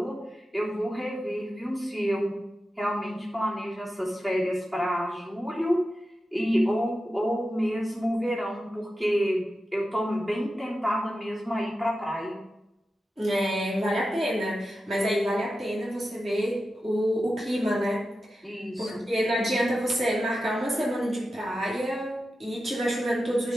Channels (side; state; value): both; normal; correlation 0.91